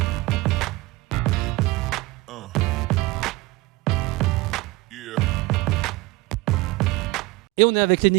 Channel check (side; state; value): left; quieter; 21.0 dB